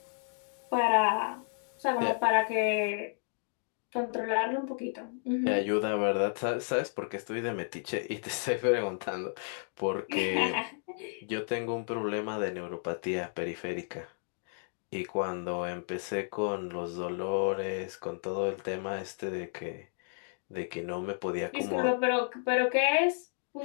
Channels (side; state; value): right; silent; digital silence